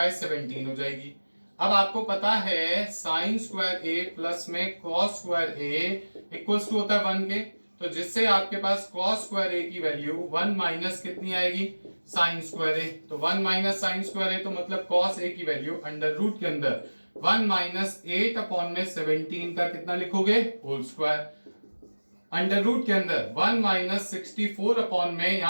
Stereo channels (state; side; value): inverted; both; correlation -1.00